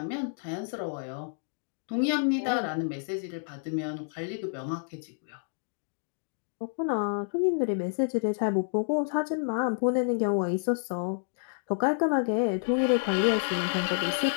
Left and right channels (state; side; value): silent; right; digital silence